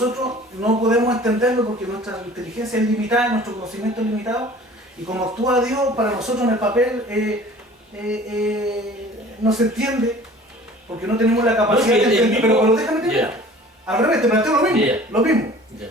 no podemos entenderlo porque nuestra inteligencia es limitada, nuestro conocimiento es limitado, y como actúa Dios, para nosotros en el papel no se entiende, porque no tenemos la capacidad No, es que de el entender, mismo- pero déjame terminar. Ya. Al revés, te planteo lo mismo, Ya. lo mismo. Ya.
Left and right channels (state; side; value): normal; both; correlation 0.47